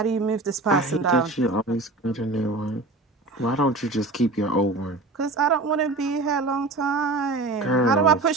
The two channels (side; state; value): left; quieter; 3.2 dB